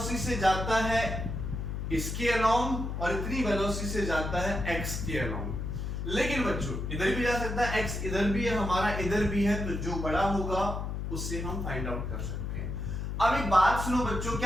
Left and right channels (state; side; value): noise; left; hum, 4 dB below the sound